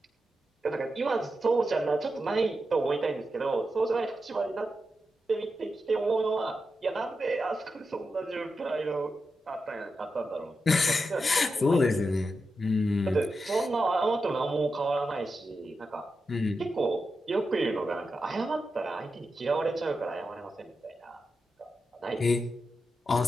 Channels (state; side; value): normal; both; correlation 0.88